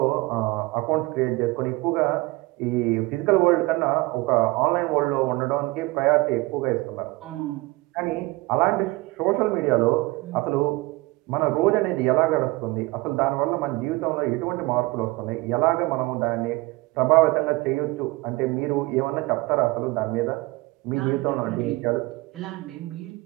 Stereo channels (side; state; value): left; quieter; 22.4 dB